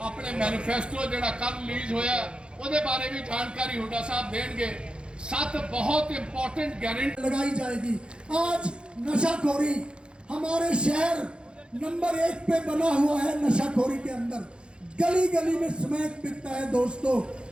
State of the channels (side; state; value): left; late; 0.054 ms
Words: अपने मैनिफेस्टो जेड़ा कल रिलीज होया ਉਹਦੇ बारे भी जानकारी हुड्डा साहब देंगे। 7 बहुत इंपॉर्टेंट गारंटी लगाई जाएगी। आज नशाखोरी हमारे शहर नंबर 1 पे बना हुआ है। नशाखोरी के अंदर गली गली में स्मैक बिकता है। दोस्तों